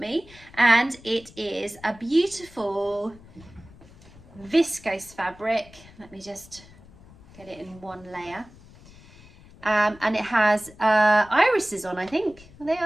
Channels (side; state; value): left; noise; rumble, 23 dB below the sound